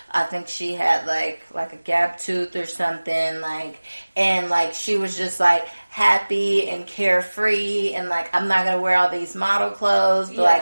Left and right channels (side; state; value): both; inverted; correlation -1.00